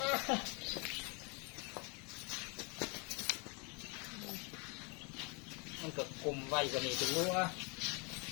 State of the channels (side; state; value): right; quieter; 32.3 dB